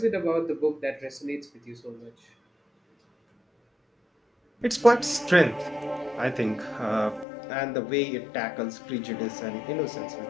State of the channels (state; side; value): drops out; right; at 7.2 s